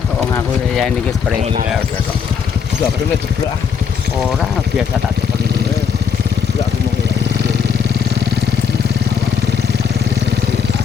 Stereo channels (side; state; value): right; quieter; 6.8 dB